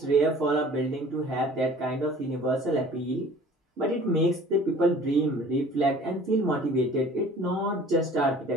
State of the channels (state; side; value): normal; both; correlation 0.48